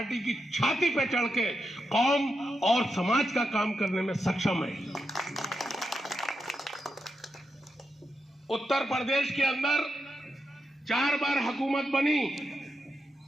की छाती पे चढ़ के कौम और समाज का काम करने में सक्षम है। उत्तर प्रदेश के अंदर 4 बार हुकूमत बनी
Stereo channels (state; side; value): normal; both; correlation 0.86